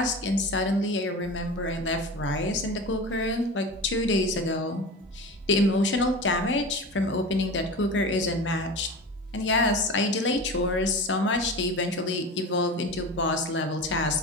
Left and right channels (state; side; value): normal; both; correlation 0.31